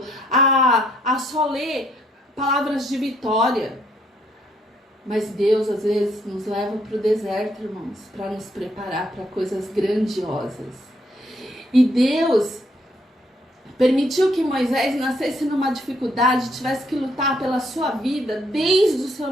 a só ler palavras de vitória. Mas Deus, às vezes, nos leva para o deserto, irmãos, para nos preparar para coisas grandiosas. E Deus permitiu que Moisés nascesse numa dificuldade, tivesse que lutar pela sua vida desde o seu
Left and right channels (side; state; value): both; normal; correlation 0.70